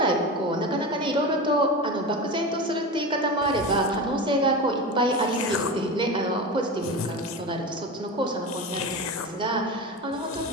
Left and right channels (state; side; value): normal; both; correlation 0.25